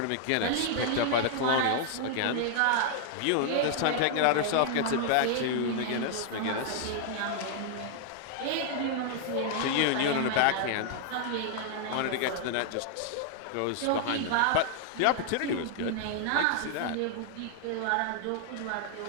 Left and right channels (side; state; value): both; different; correlation 0.00